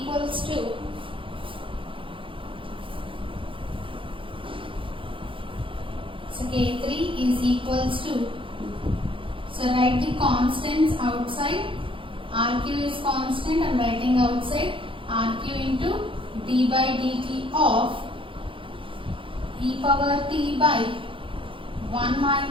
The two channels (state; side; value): late; left; 0.25 ms